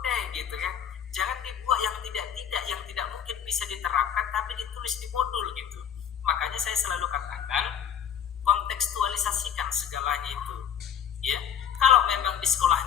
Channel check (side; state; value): right; quieter; 8.7 dB